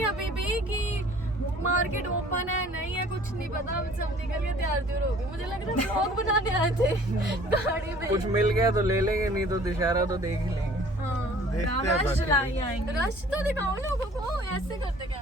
अभी भी कि मार्केट ओपन है नहीं है, कुछ नहीं पता। हम सब निकल के तैयार हो गए। मुझे लग रहा है व्लॉग बनाने आए थे गाड़ी में। कुछ मिल गया तो ले लेंगे, नहीं तो दशहरा तो देख ही लेंगे। हाँ, देखते हैं रश बाकी। लाई आएंगे। रश तो दिखाओ लोगों को, ऐसे करते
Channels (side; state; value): both; normal; correlation 0.52